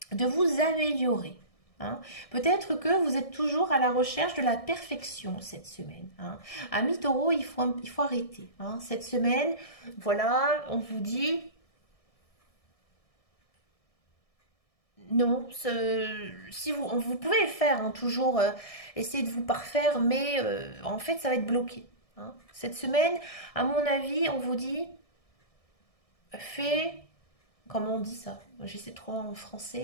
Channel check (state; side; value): late; right; 1.6 ms